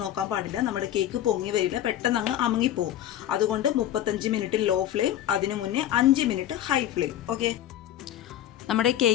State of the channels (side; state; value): right; quieter; 11.8 dB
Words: നോക്കാൻ പാടില്ല. നമ്മുടെ കേക്ക് പൊങ്ങി വരില്ല, പെട്ടെന്ന് അങ്ങ് അമുങ്ങിപ്പോവും. അതുകൊണ്ട് 35 മിനിറ്റ് ലോ ഫ്ലെയിം, അതിനു മുന്നേ 5 മിനിറ്റ് ഹൈ ഫ്ലെയിം. ഓക്കെ, നമ്മുടെ